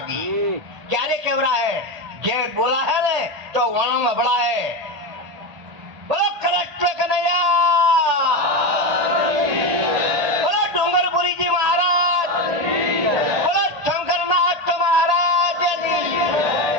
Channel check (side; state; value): left; late; 1.8 ms